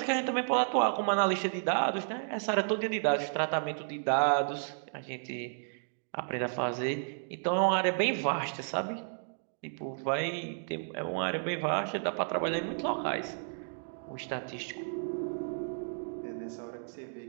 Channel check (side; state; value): left; silent; digital silence